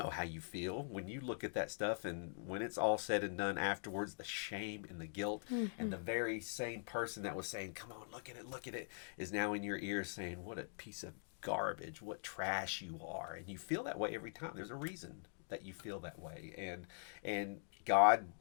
how you feel when you look at that stuff. And when it's all said and done afterwards, the shame and the guilt, and the very same person that was saying, come on, look at it, is now in your ears saying, what a piece of garbage, what trash you are. And you feel that way every time. There's a reason that you feel that way. And God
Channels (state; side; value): silent; right; digital silence